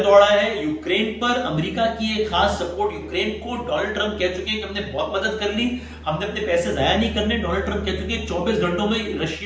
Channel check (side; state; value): both; identical; correlation 1.00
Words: دوڑا ہے یوکرین پر. امریکہ کی ایک خاص سپورٹ یوکرین کو. ڈونلڈ ٹرمپ کہہ چکے ہیں کہ ہم نے بہت مدد کر لی, ہم نے اپنے پیسے ضائع نہیں کرنے. ڈونلڈ ٹرمپ کہہ چکے ہیں 24 گھنٹوں میں